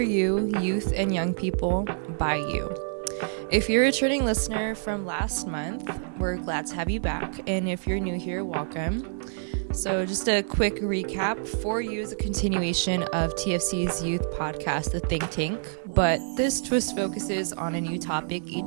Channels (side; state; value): left; silent; 60 dB below the other